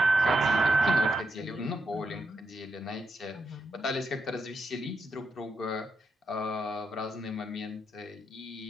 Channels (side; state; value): both; normal; correlation 0.82